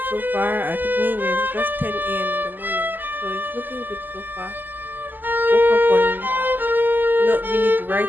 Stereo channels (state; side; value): late; left; 0.088 ms